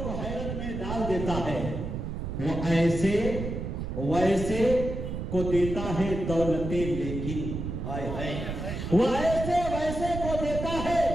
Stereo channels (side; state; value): right; noise; rumble, 5 dB below the sound